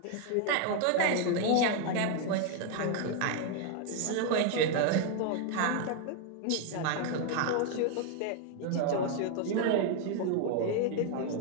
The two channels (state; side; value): different; both; correlation 0.01